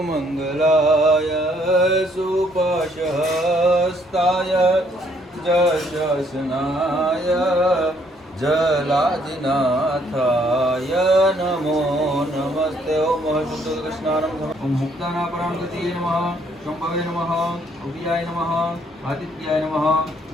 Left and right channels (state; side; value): normal; both; correlation 0.67